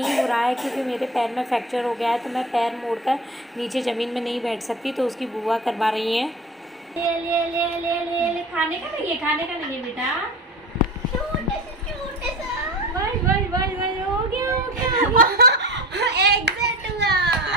हो रहा है क्योंकि मेरे पैर में फ्रैक्चर हो गया है, तो मैं पैर मोड़कर नीचे ज़मीन में नहीं बैठ सकती, तो उसकी बुआ करवा रही हैं। ले ले ले ले ले ले खाने का नहीं है, खाने का नहीं है बेटा। हो गया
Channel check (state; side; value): normal; both; correlation 0.33